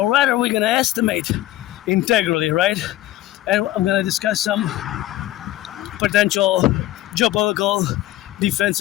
rather we're gonna estimate integrally, right? And I'm gonna discuss some potential geopolitical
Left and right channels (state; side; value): quieter; right; 15.4 dB